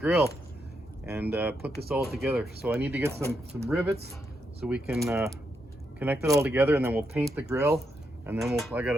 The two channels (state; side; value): normal; both; correlation 0.81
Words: and put this all together. So I need to get some rivets so we can connect it all together, and then we'll paint the grill, and then I got